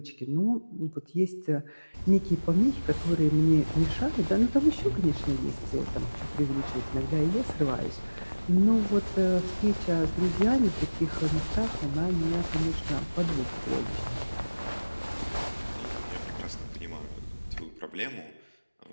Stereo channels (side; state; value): both; inverted; correlation -1.00